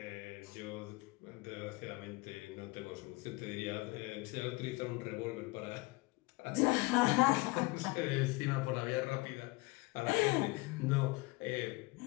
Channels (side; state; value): right; quieter; 23.5 dB